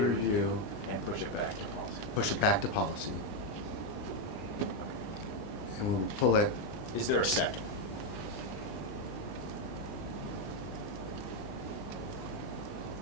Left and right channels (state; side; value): late; right; 20 ms